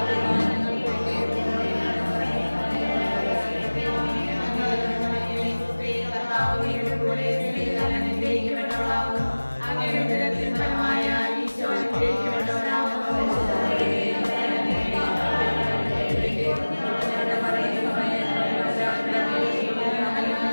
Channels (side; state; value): both; inverted; correlation -1.00